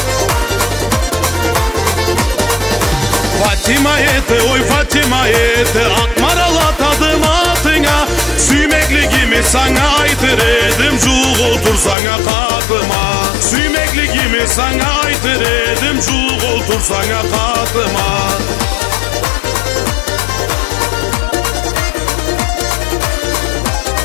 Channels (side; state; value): right; drops out; at 12.0 s